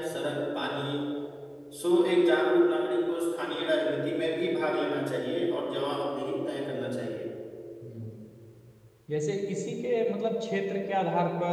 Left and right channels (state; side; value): identical; both; correlation 1.00